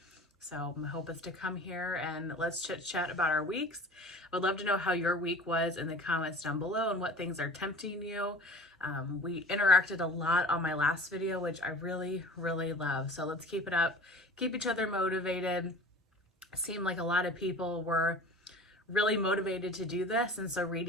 So my hope is to come here and let's chit chat about our weeks. I would love to know how your week was in the comments down below and what things are tempting you. We interacted a lot on my last video, which I really love. So let's keep it up, keep each other motivated. It seemed like a lot of people were really motivated to do this, and so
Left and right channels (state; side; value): normal; both; correlation 0.41